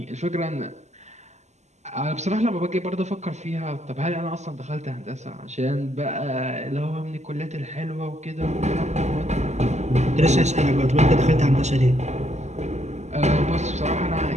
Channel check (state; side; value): late; left; 0.33 ms